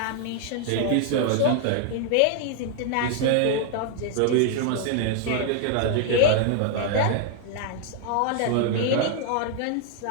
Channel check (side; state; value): both; different; correlation 0.00